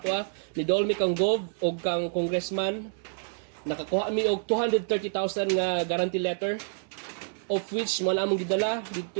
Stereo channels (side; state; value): left; silent; 59 dB below the other